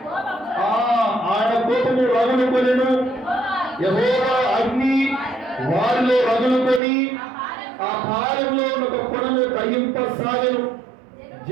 ఆయన కోపము రగులుకొనెను. యెహోవా అగ్ని వారిలో రగులుకొని ఆ పాలెంలో ఒక కొనను దహింపసాగెను.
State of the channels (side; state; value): left; drops out; at 6.8 s